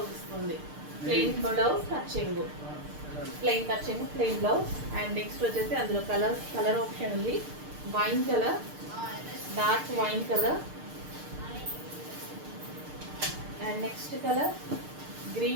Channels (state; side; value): late; left; 6.6 ms